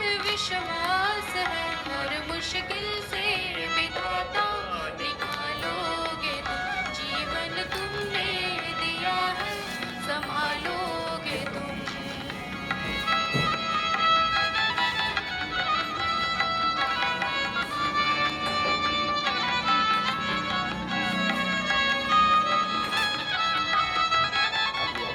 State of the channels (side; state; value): both; identical; correlation 1.00